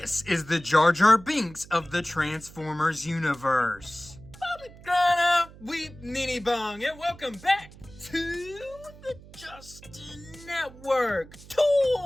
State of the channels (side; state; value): right; noise; hum, 20 dB below the sound